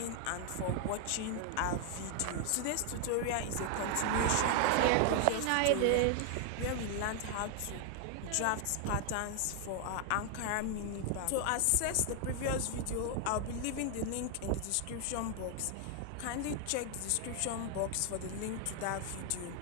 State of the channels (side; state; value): both; different; correlation 0.00